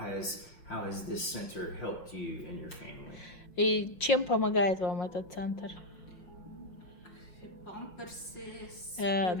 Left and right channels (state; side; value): late; right; 5.9 ms